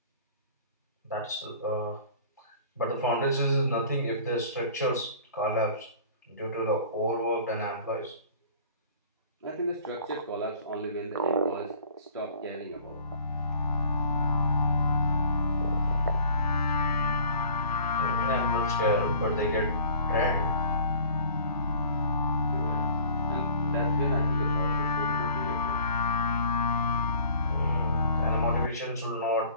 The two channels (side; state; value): both; inverted; correlation -0.49